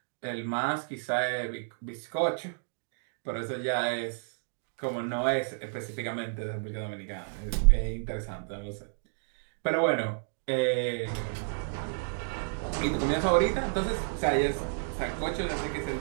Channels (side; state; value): left; silent; digital silence